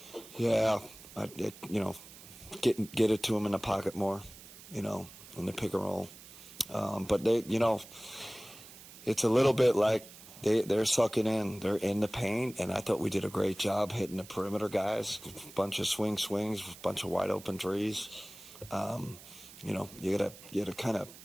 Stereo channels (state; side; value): noise; right; hiss, 18 dB below the sound